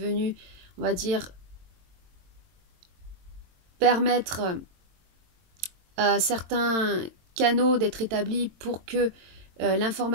on va dire, permettre à certains canaux d'être établis pour que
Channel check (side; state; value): left; late; 22 ms